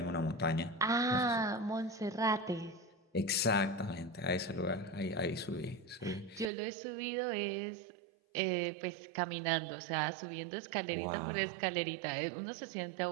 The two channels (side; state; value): left; drops out; at 6.5 s